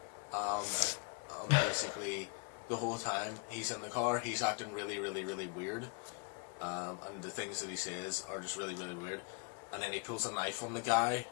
Basically, the whole time he's in the car, he's acting really, really, really weird. And the things that he says are just really, really weird. And then he pulls a knife on the guy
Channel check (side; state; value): right; quieter; 33.6 dB